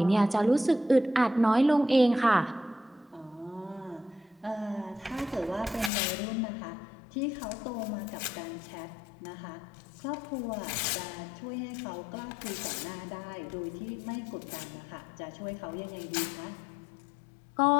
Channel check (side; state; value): right; drops out; at 5.9 s